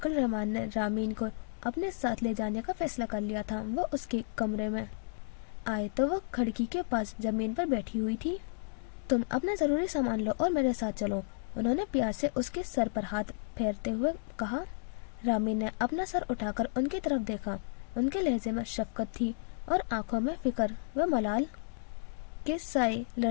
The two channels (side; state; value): right; silent; digital silence